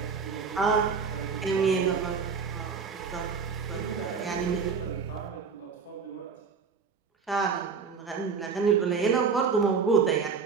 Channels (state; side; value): quieter; left; 5.6 dB